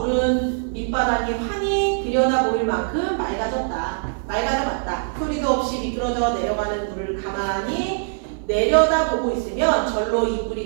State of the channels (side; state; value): left; silent; digital silence